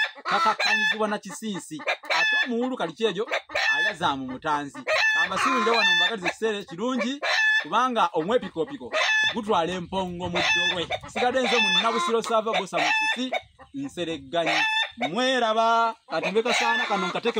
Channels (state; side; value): identical; both; correlation 1.00